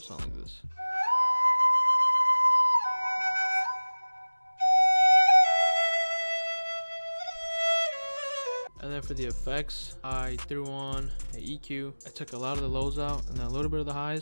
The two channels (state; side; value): inverted; both; correlation -1.00